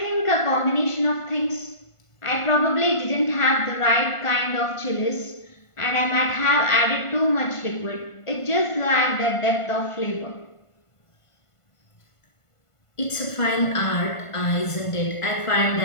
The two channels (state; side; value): late; right; 1.5 ms